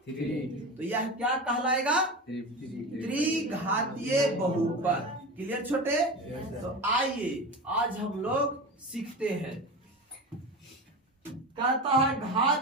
3। तो यह क्या कहलाएगा? त्रिघातीय बहुपद। क्लियर छोटे? तो आइए आज हम लोग सीखते हैं। कहता है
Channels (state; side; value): normal; both; correlation 0.27